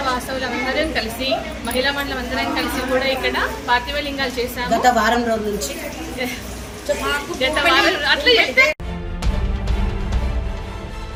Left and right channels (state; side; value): identical; both; correlation 1.00